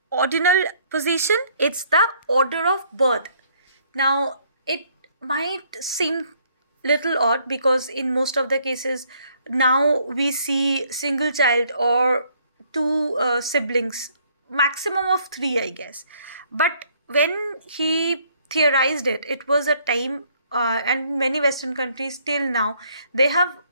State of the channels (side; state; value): both; inverted; correlation -0.65